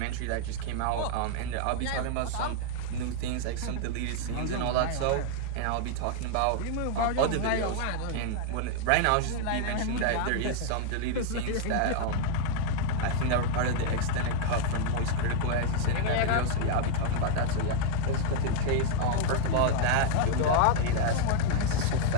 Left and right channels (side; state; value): both; different; correlation 0.00